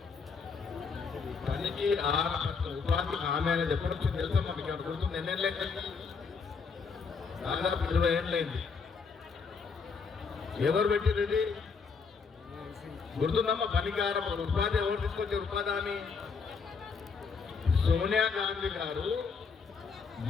పనికి ఉపాధి హామీ అనేది ఎప్పటి నుంచి తెలుసా మనకి? అక్కడ గుర్తుంది, ఎన్నేళ్ళైంది? దాదాపు 20 ఏళ్ళైంది. ఎవరు పెట్టింది ఇది? గుర్తుందమ్మా? పనికారం ఉపాధి ఎవరు తీసుకొచ్చారు? ఉపాధి హామీ సోనియా గాంధీ గారు,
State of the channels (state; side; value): quieter; right; 5.2 dB